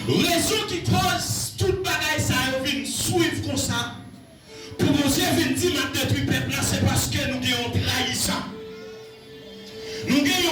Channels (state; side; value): identical; both; correlation 1.00